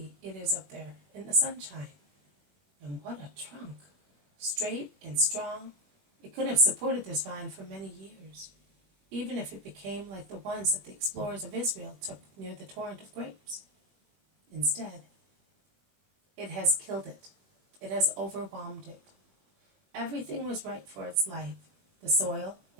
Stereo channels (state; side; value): late; left; 21 ms